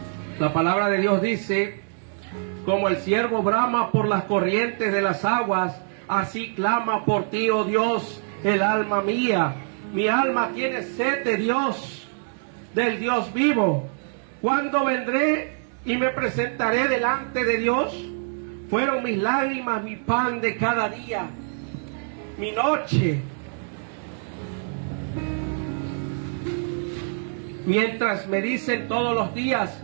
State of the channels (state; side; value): silent; left; 62 dB below the other